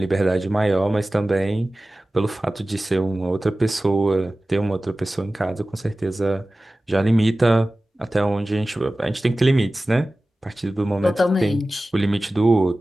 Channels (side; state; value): both; normal; correlation 0.96